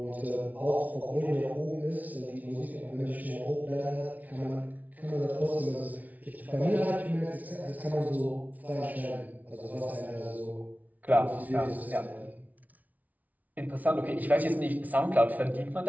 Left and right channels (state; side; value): late; left; 0.074 ms